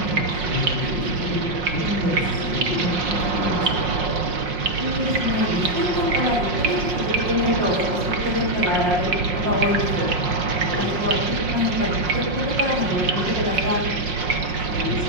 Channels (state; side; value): late; left; 5.6 ms